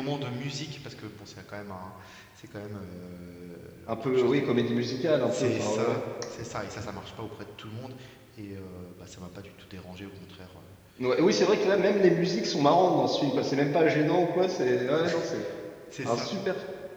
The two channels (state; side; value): identical; both; correlation 1.00